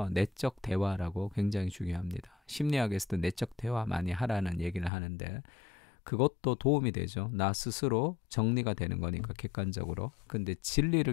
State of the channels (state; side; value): drops out; right; at 4.9 s